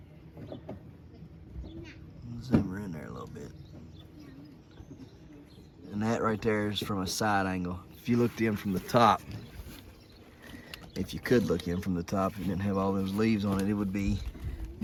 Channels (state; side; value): identical; both; correlation 1.00